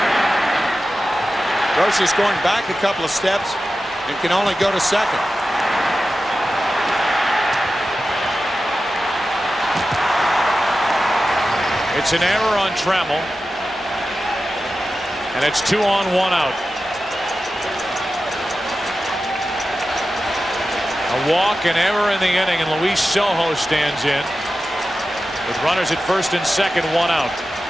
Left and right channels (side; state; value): both; normal; correlation 0.93